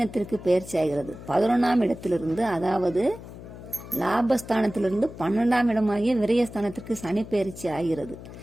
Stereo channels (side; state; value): left; noise; hum, 14 dB below the sound